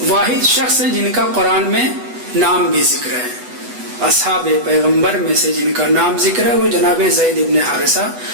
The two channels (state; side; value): late; left; 8.1 ms